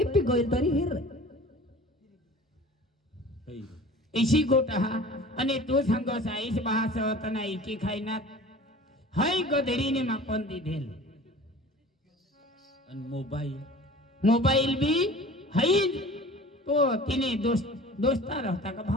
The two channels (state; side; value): normal; both; correlation 0.42